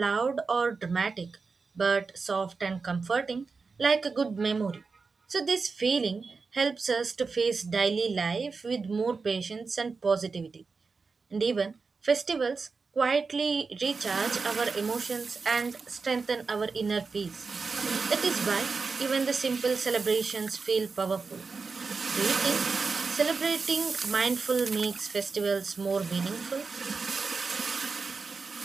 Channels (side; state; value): left; quieter; 4.6 dB